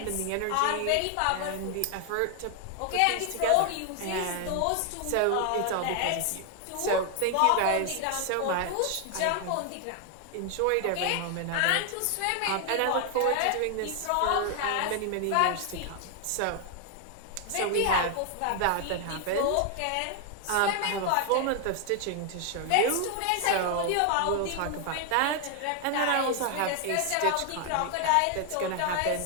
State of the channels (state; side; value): different; both; correlation 0.00